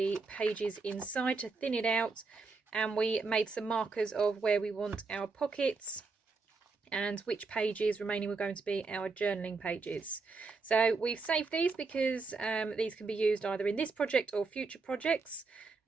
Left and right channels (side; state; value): left; quieter; 4.2 dB